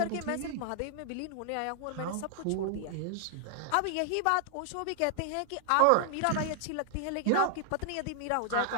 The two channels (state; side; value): different; both; correlation 0.00